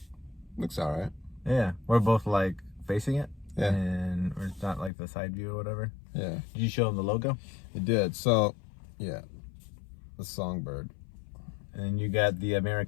Looks all right. Yeah. We're both, like, facing it. Yeah. And it's not, like, the side view or whatever. Yeah, Did you show them the logo? it did. So, yeah, the Songbird. And you got the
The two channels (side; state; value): right; drops out; at 4.9 s